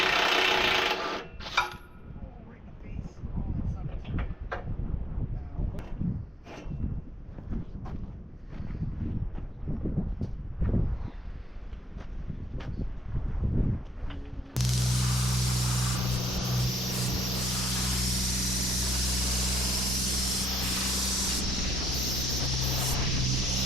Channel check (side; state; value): both; normal; correlation 0.72